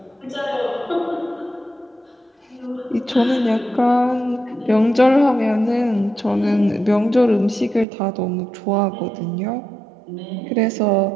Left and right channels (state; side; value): drops out; left; at 7.9 s